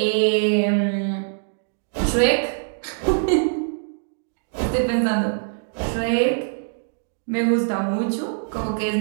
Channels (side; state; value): left; silent; 63 dB below the other